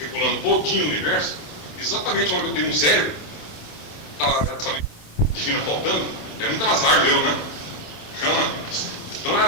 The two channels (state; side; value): late; right; 27 ms